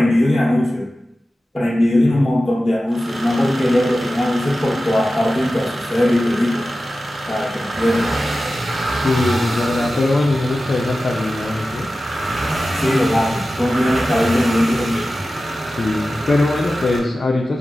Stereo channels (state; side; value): normal; both; correlation 0.94